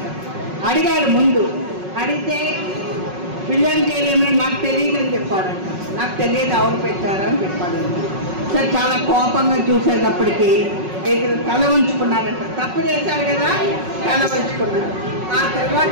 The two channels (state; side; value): late; left; 5.4 ms